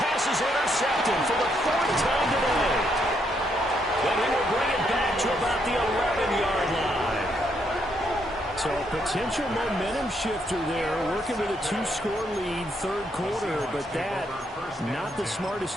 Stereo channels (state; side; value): normal; both; correlation 0.75